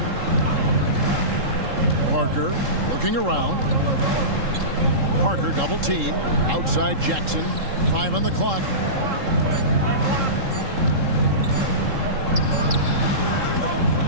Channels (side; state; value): left; late; 3.7 ms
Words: Parker looking around. Parker double team. Outside Jackson. 5 on the clock.